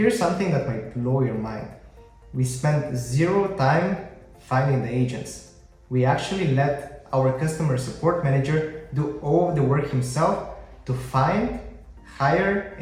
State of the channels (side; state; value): both; identical; correlation 1.00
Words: something that might blow your mind. We spent 0 time finding the agents. We actually let our customer support manager do all of the work himself to find, hire,